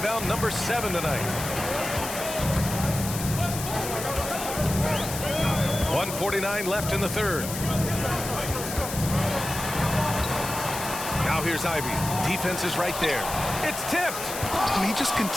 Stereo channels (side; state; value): left; noise; hiss, 7 dB below the sound